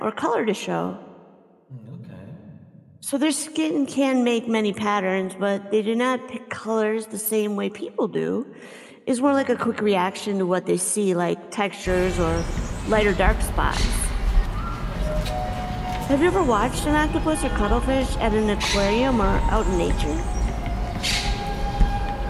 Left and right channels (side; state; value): both; identical; correlation 1.00